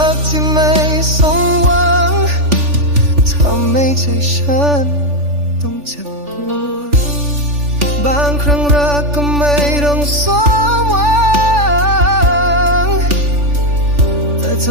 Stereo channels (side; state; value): left; late; 3.4 ms